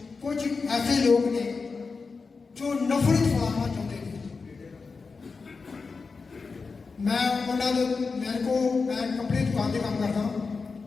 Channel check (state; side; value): quieter; right; 4.6 dB